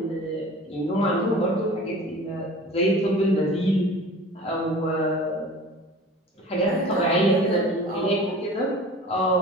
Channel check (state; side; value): normal; both; correlation 0.41